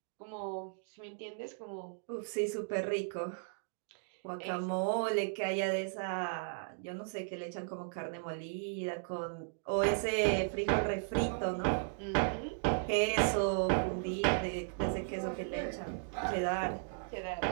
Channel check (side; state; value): left; silent; digital silence